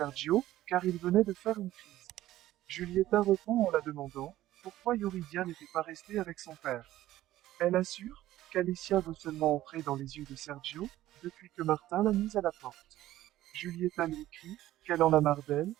car il venait de faire une crise. Julieta répond en la demandant, pourquoi Yuridia n'était pas restée avec son père. Elle assure qu'Alicia veut seulement entrer dans les yeux de Sergio, depuis que Martin l'a mise à la porte. Julieta lui écrit qu'elle en a marre d'elle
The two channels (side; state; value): left; quieter; 14.6 dB